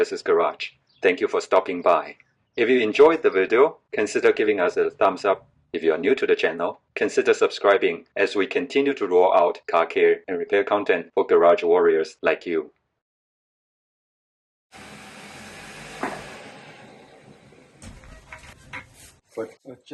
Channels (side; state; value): both; identical; correlation 1.00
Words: Garage. Thank you for stopping by. If you enjoyed the video, consider giving us a thumbs up. If you are new to the channel, consider subscribing as we continue to roll out car care and repair content for garage warriors like you. Put a